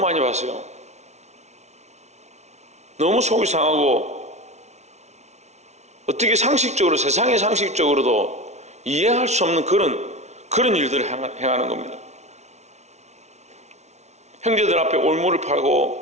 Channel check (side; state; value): left; late; 0.32 ms